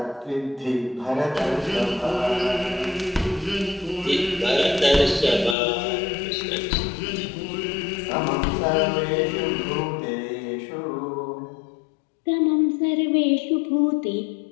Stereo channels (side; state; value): right; drops out; at 5.6 s